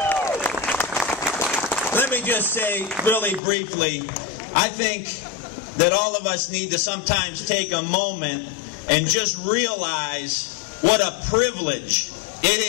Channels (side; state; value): right; drops out; at 3.4 s